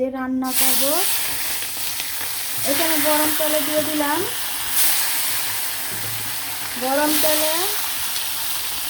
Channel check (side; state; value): both; identical; correlation 1.00